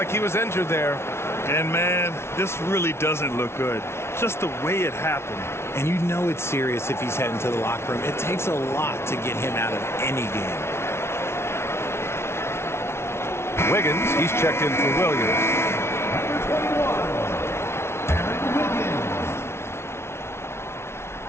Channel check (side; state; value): right; late; 0.12 ms